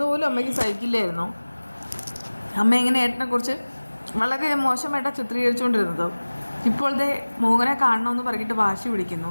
പോലും അമ്മയ്ക്ക് സഹിക്കില്ലായിരുന്നു. അമ്മ ഇങ്ങനെ ഏട്ടനെക്കുറിച്ച് വളരെ മോശമായിട്ടാണ് ചിത്രീകരിച്ചുകൊണ്ടിരുന്നത്. ഇപ്പോഴത്തെ മോഹനെ കാണണമെന്ന് പറഞ്ഞിട്ട് വാശി പിടിക്കുന്നു.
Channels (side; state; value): both; inverted; correlation -1.00